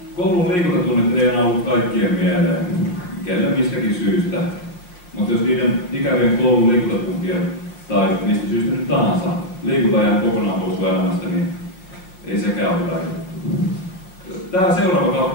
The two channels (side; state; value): right; late; 5.5 ms